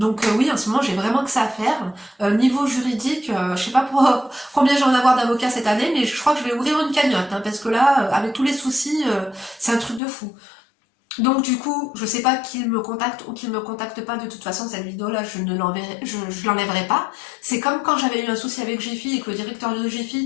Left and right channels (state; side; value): drops out; right; at 10.0 s